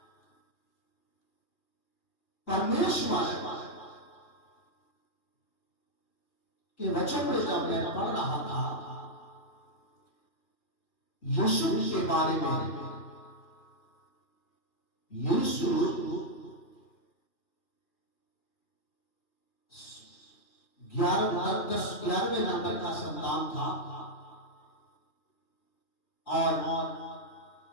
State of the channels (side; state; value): right; late; 2.4 ms